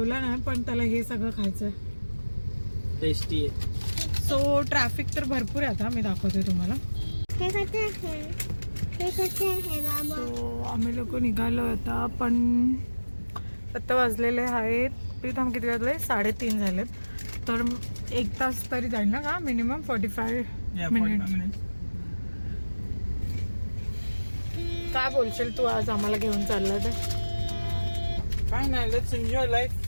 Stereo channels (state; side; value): inverted; both; correlation -1.00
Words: नाही पण त्याला हे सगळं खायचं. टेस्टी आहे. सो ट्रॅफिक तर भरपूर आहे. आता मी दाखवते तुम्हाला. सो आम्ही लोक निघालो आता, पण आता वाजलेले आहेत प्रीतम किती वाजले? 3:30 झालेत. तर 1 तास तरी जाईल ना का मिनिमम? 45 मिनिट. काय बोलशील तू आज आम्हाला घेऊन चालला तर? काय नाही, let's enjoy life.